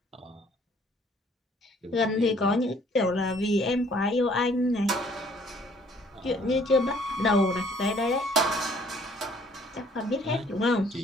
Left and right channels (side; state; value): both; normal; correlation 0.59